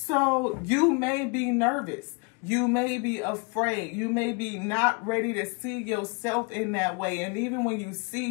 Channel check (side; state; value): right; quieter; 33.3 dB